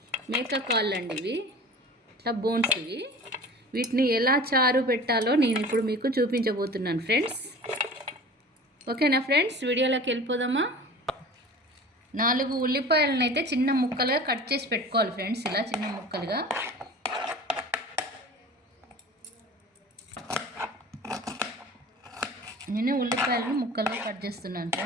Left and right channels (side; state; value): both; normal; correlation 0.39